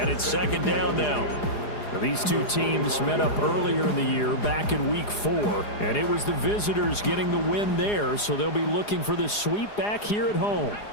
it's second down now. These two teams met up earlier in the year, back in Week 4. And it was the visitors getting the win there, so they'll be looking for the sweep back here at home.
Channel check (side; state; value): right; late; 4.9 ms